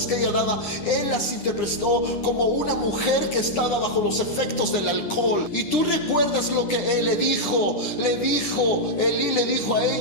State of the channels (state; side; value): late; right; 9.9 ms